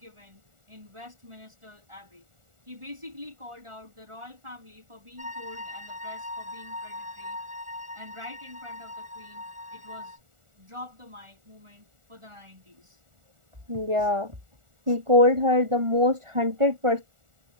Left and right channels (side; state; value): left; late; 1.4 ms